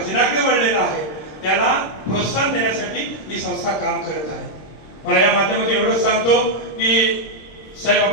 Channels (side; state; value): right; late; 26 ms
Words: वळलेला आहे, त्याला प्रोत्साहन देण्यासाठी ही संस्था काम करत आहे. मला या माध्यमातून एवढंच सांगतो की साहेब,